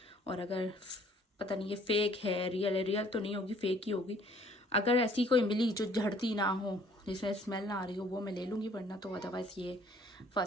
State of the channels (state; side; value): normal; both; correlation 0.58